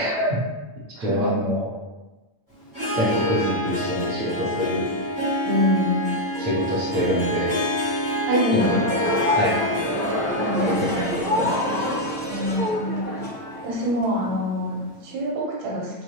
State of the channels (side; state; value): left; late; 8.9 ms